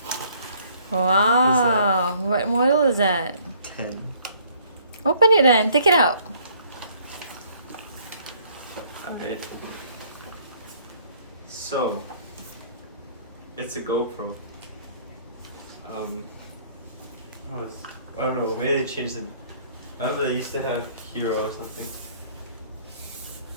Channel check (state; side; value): inverted; both; correlation -0.61